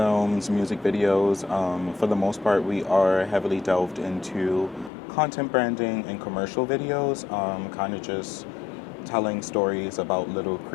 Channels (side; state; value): right; drops out; at 4.9 s